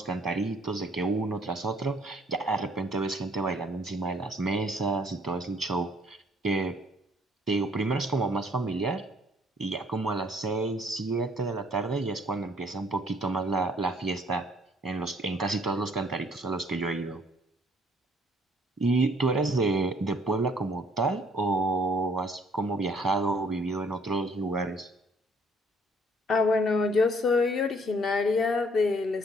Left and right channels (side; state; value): both; normal; correlation 0.61